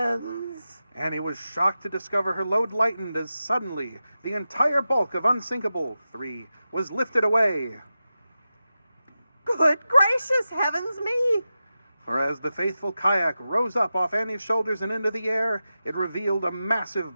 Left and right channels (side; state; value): both; inverted; correlation -0.92